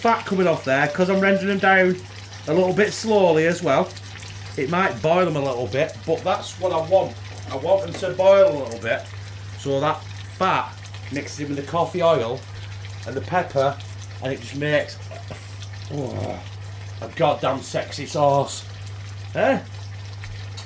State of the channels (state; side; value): identical; both; correlation 1.00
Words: coming off there because I'm rendering them down a little bit slowly as well. It might boil them a little bit, but that's what I want. I want them to boil a little bit so that fat mixes in with the coffee oil and the pepper, and it just makes a goddamn sexy sauce. Eh?